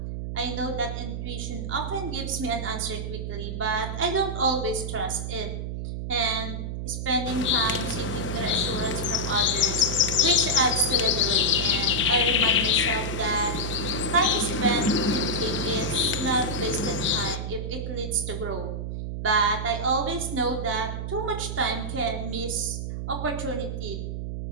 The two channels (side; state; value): right; noise; hum, 4 dB below the sound